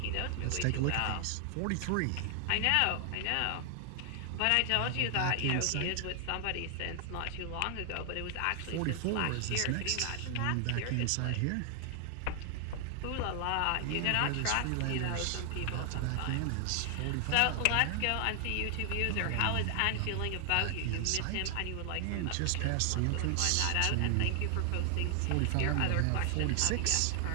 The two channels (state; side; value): different; both; correlation 0.00